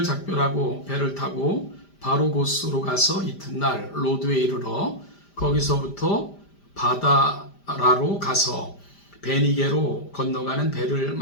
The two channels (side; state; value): right; late; 5.0 ms